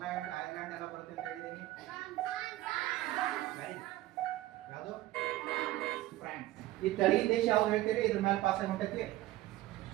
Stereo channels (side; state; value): left; quieter; 16.2 dB